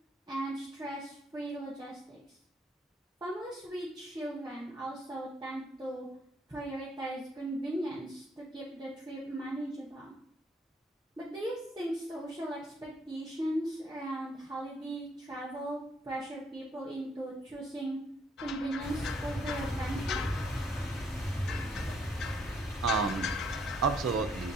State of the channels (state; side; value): normal; both; correlation 0.68